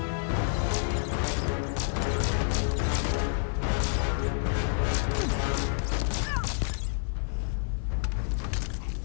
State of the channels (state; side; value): silent; right; 59 dB below the other